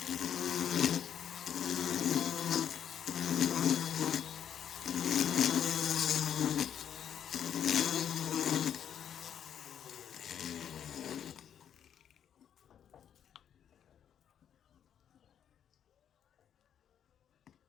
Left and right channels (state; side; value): quieter; right; 9.1 dB